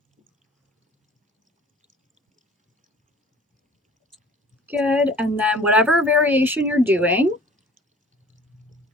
Good, and then whatever variation you're doing,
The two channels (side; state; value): both; normal; correlation 0.48